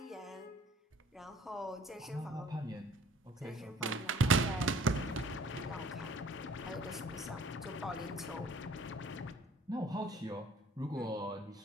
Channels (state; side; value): normal; both; correlation 0.55